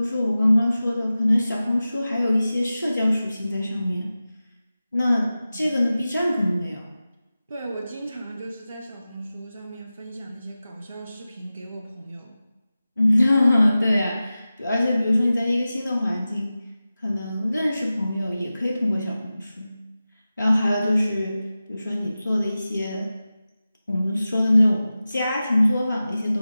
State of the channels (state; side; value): inverted; both; correlation -0.95